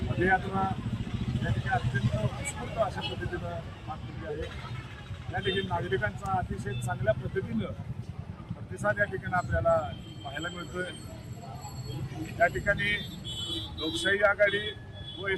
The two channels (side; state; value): both; identical; correlation 1.00